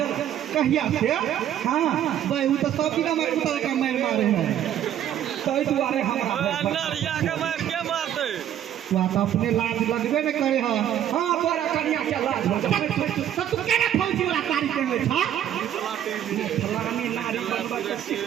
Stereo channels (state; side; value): quieter; left; 10.7 dB